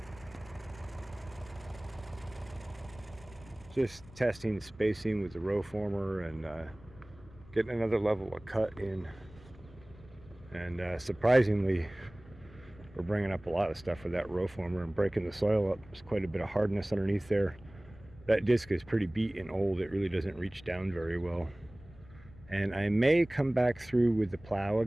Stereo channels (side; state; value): left; noise; rumble, 21 dB below the sound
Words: Just testing spacing with the row former and getting another level of cut in. And surprisingly, we're bringing up a lot of stuff with that row former and breaking the soil up. There's quite a bit of hardness underneath there. That disc is pretty beat and old. It really doesn't reach down very well. And I may come back through with the plow